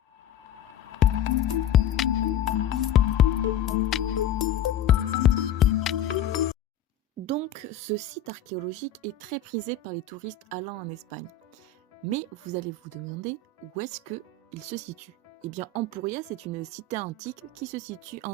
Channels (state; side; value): quieter; right; 6.7 dB